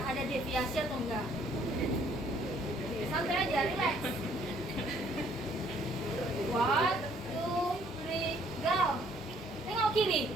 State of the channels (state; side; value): normal; both; correlation 0.62